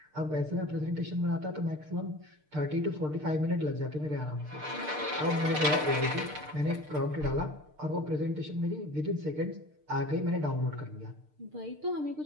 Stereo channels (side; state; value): left; late; 6.6 ms